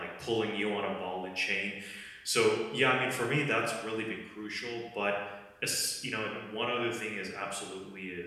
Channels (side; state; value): both; identical; correlation 1.00